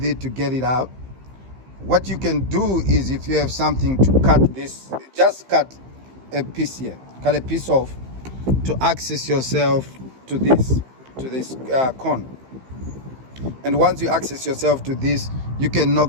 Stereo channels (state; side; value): late; left; 15 ms